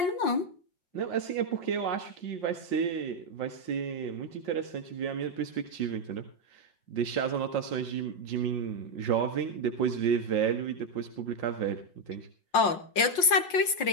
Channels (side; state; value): right; late; 5.6 ms